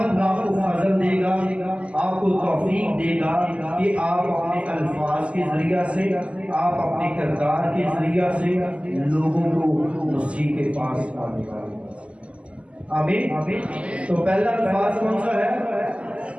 آپ کو فضل دے گا، آپ کو توفیق دے گا کہ آپ اپنے الفاظ کے ذریعہ سے، آپ اپنے کردار کے ذریعہ سے لوگوں کو مسیح کے پاس آنے والے۔ آمین۔ تو پہلا الفاظ کون سا ہے؟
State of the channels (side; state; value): left; late; 0.057 ms